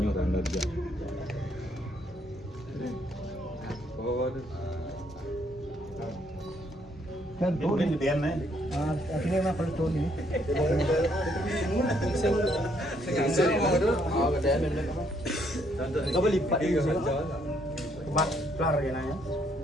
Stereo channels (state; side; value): normal; both; correlation 0.70